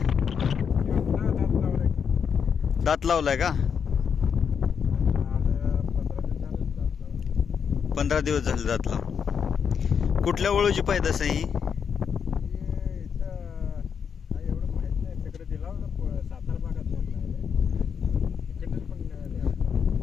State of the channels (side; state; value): right; quieter; 7.0 dB